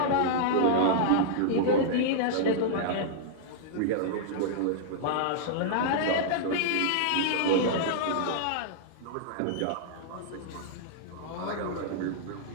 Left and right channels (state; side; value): different; both; correlation -0.01